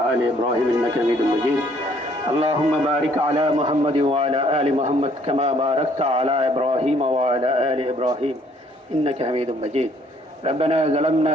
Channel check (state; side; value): normal; both; correlation 0.63